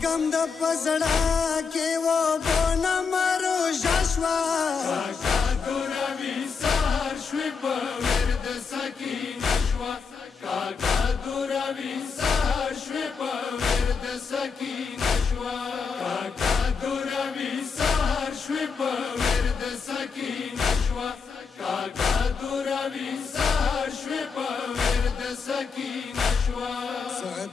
د پزړه کې و بونه مرو شوا کاکا دوروي سهار شوي په ورد سکینه شوه کاکا دوروي سهار شوي په ورد سکینه شوه کاکا دوروي سهار شوي په ورد سکینه شوه کاکا دوروي سهار شوي په ورد سکینه شوه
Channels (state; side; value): quieter; right; 5.4 dB